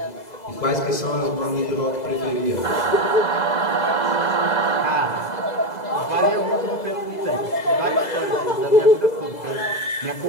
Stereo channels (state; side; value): late; right; 2.0 ms